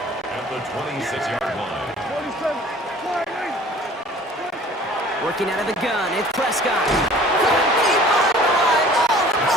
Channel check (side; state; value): both; normal; correlation 0.49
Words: the 26-yard line. Working out of the gun, it's Prescott. Coming deep on the line. Oh, the